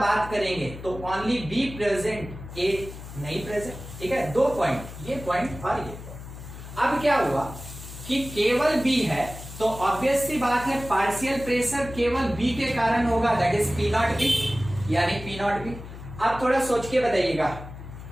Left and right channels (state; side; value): noise; left; hum, 13 dB below the sound